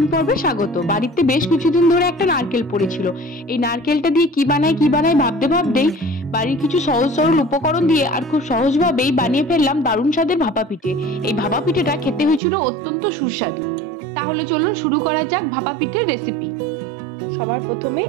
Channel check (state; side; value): drops out; left; at 12.4 s